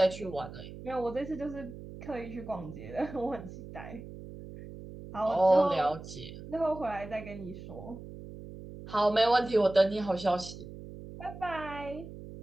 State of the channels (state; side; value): noise; right; hum, 13 dB below the sound